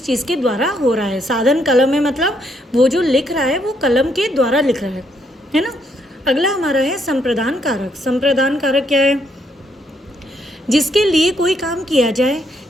चीज़ के द्वारा हो रहा है। साधन कलम है, मतलब वो जो लिख रहा है वो कलम के द्वारा लिख रहा है ना। अगला हमारा है संप्रदान कारक। संप्रदान कारक क्या है? जिसके लिए कोई काम किया जाए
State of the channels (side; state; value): both; normal; correlation 0.73